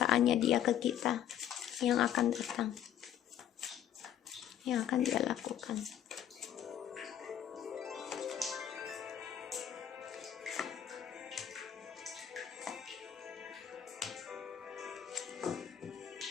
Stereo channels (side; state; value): right; quieter; 10.3 dB